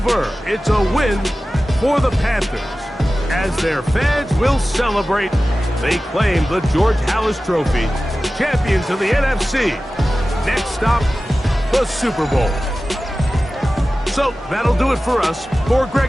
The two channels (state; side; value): normal; both; correlation 0.96